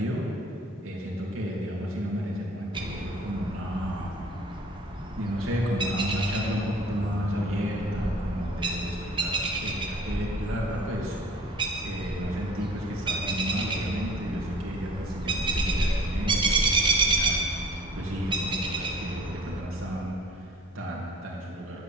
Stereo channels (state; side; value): normal; both; correlation 0.50